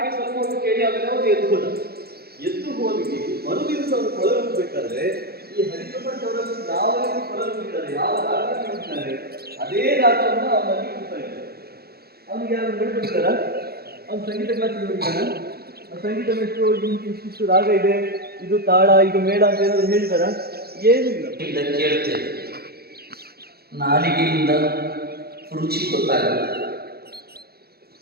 ಸ್ವಲ್ಪ ಹೊತ್ತು ಕೇಳಿ ಆಮೇಲೆ ಅವ್ರು ಎದ್ದು ಹೋಗಿ ಮರುದಿವಸ ಅವರು ಕೊಳಲುಬೇಕಾದ್ರೆ ಈ ಹರಿಪ್ರಸಾದ್ ಅವರನ್ನು ಯಾವ ರೀತಿ ಕೊಳಲುತ್ತಾರೆ, ಯಾವ ರಾಗದಲ್ಲಿ ಹೋಗ್ತಾರೆ, ಅದೇ ರಾಗವನ್ನು ಅವನಲ್ಲಿ ಹೋಗ್ತಾ ಇದ್ದಾರೆ. ಅವನಿಗೆ ಯಾರು ಹೇಳ್ಬಿಡ್ತಾರ, ಅವ್ನು ಸಂಗೀತ ಕ್ಲಾಸಿಗೆ ಹೋಗಿದ್ದಾನ, ಸಂಗೀತ ಎಷ್ಟು ಇಷ್ಟು ರಾಗ ಇದೆ, ಇದು ತಾಳ, ಇದು ಮೇಳ ಅಂತ ಏನಾದ್ರು ಹೇಳ್ತಾರ? ಏನಿಲ್ಲ. ಕೇಳ್ತೇವೆ, ನಾಲಿಗೆಯಿಂದ ರುಚಿ ಗೊತ್ತಾಗುತ್ತೆ,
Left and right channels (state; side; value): late; left; 0.46 ms